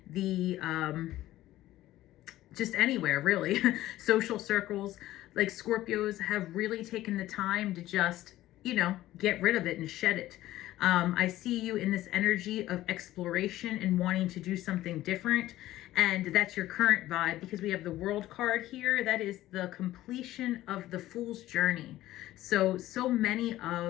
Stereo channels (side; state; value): right; quieter; 15.1 dB